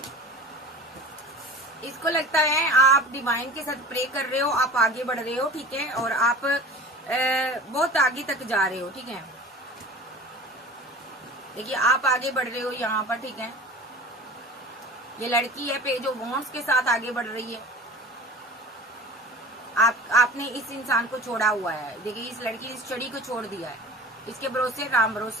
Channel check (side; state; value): both; normal; correlation 0.39